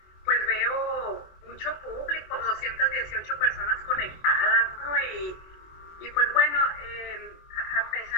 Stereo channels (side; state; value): right; late; 24 ms